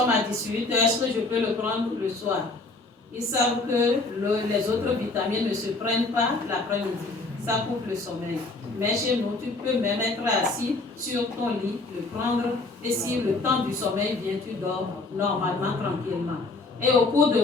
à 18h. Est-ce que je peux le prendre le soir? Ils savent que les autres vitamines ne se prennent pas l'après-midi. Ça coupe le sommeil. Mais chez nous, tu peux même être assis sur ton lit, le prendre, et si le temps du sommeil vient, tu dors normalement, tranquillement. Et au cours de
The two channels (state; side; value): quieter; right; 3.4 dB